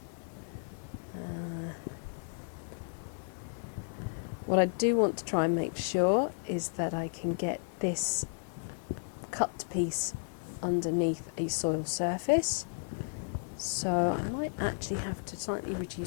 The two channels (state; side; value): silent; right; 55 dB below the other